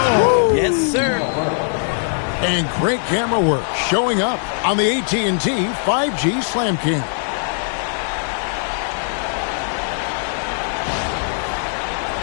Oh, yes, sir. And great camera work showing up on the AT&T 5G Slam King.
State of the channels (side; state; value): right; silent; digital silence